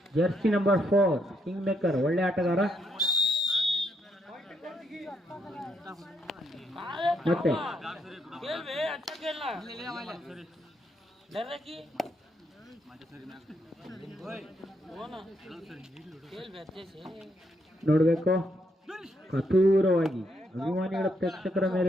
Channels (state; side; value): normal; both; correlation 0.75